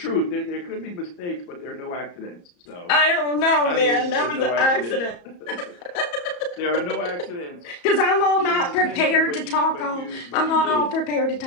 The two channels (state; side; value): late; right; 34 ms